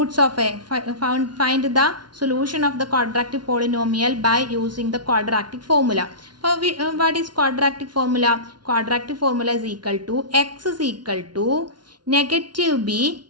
of a find the solution of the quadratic polynomial by using the quadratic formula. What is quadratic formula? Quadratic formula is equal to x is equal to negative b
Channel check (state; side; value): late; left; 0.70 ms